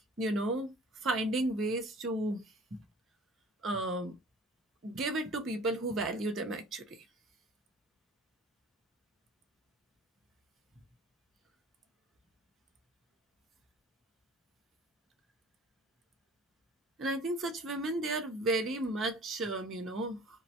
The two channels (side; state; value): both; normal; correlation 0.47